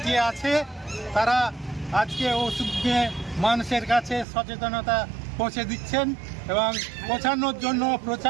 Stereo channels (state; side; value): drops out; left; at 4.2 s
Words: আছে। তারা আজকে ওষুধ নিয়ে মানুষের কাছে সচেতনতা পৌঁছে দিচ্ছেন এবং পৌঁছানোর জন্য